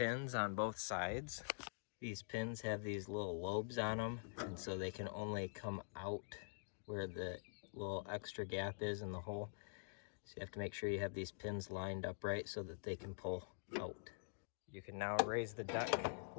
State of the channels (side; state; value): right; silent; digital silence